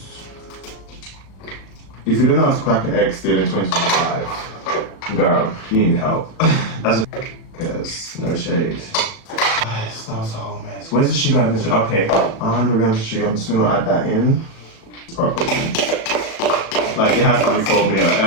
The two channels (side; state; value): right; late; 36 ms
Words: If you don't know how to crack an egg still in 2025, girl, you need help. That's because no shade. Guys, that was a whole mess. Where's the sugar? Okay, 100 grams of sugar. I'm just gonna add that in properly. Like it has to be for me or